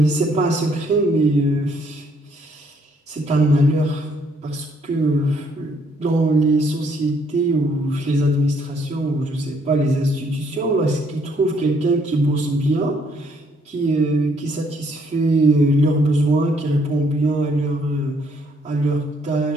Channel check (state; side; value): normal; both; correlation 0.68